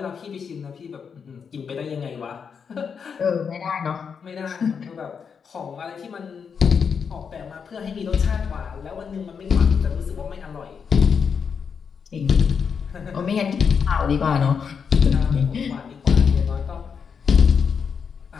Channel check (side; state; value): right; quieter; 6.4 dB